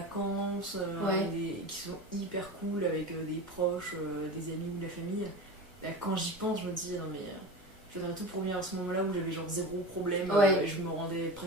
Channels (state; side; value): normal; both; correlation 0.29